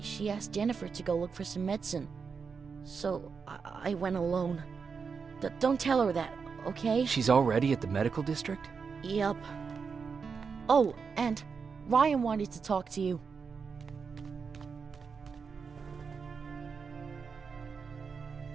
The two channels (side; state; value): left; quieter; 5.6 dB